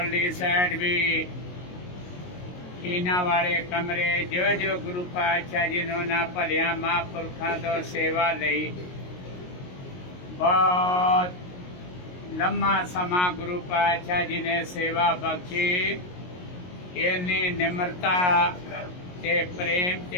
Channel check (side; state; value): right; late; 22 ms